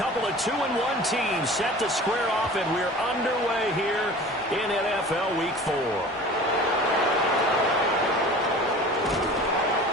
of 2-1 teams set to square off, and we're underway here in NFL Week 4.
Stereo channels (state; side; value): normal; both; correlation 0.41